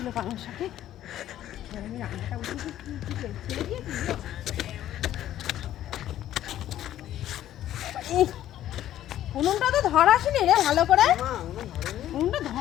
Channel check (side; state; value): right; quieter; 12.4 dB